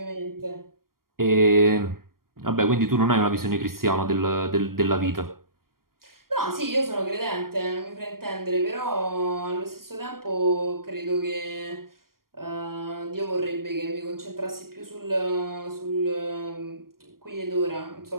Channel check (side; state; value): left; late; 0.92 ms